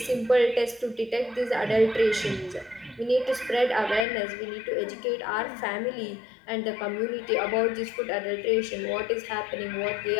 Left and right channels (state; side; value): drops out; right; at 4.0 s